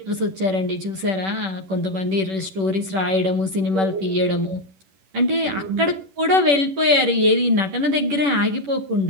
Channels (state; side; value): late; left; 10 ms